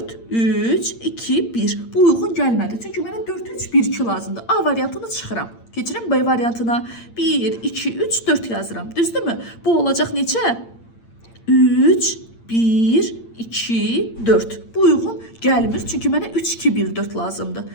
3, 2, 1. Bu uyğun gəlmədi. Çünki mənə 4, 3, 1, 2 lazımdır. A variantını çıxıram. Keçirəm B variantına. 1, 2, 3, 4 yazıram. Düzdürmü? Bu olacaq neçə? 3, 1, 2, 4. Bu uyğun gəlmir. Çünki mənə 3, 2, 1, 4 lazımdır.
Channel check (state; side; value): late; right; 8.7 ms